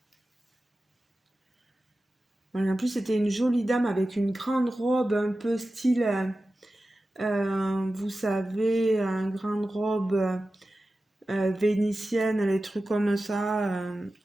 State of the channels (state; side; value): normal; both; correlation 0.94